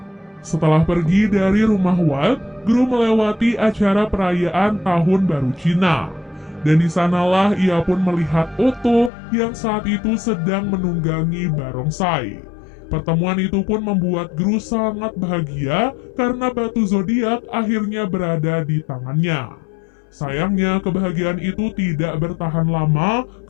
Setelah pergi dari rumah Walt, Gru melewati acara perayaan Tahun Baru Cina. Dan di sanalah ia pun melihat Otto yang saat itu sedang menunggangi barongsai. Pertemuan itu pun membuat Gru sangat bahagia karena batu zodiak akhirnya berada di tangannya. Sayangnya kebahagiaan itu tidak bertahan lama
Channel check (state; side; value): drops out; right; at 9.1 s